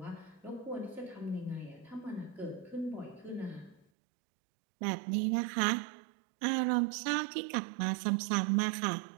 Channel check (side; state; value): left; drops out; at 3.9 s